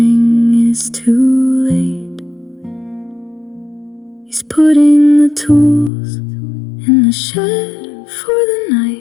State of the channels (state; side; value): drops out; right; at 5.9 s